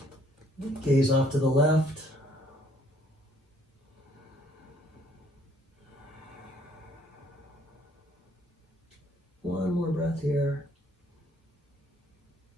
Gaze off to the left. One more breath here.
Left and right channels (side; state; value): both; normal; correlation 0.63